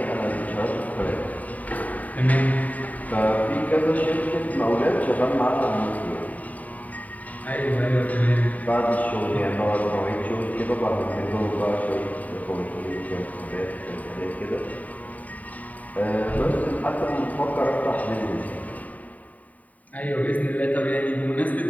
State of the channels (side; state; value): right; late; 0.072 ms